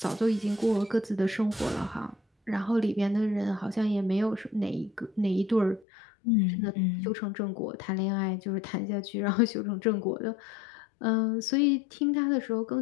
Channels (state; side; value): drops out; right; at 5.9 s